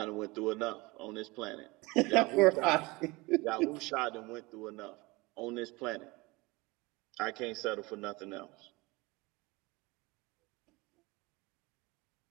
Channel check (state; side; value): quieter; left; 23.5 dB